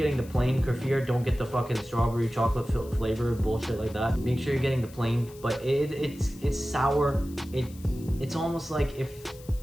the plain kefir. Don't get the fucking strawberry chocolate flavor bullshit like that. Make sure you're getting the plain, but it's sour. It's almost like if,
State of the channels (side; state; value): left; noise; hiss, 22 dB below the sound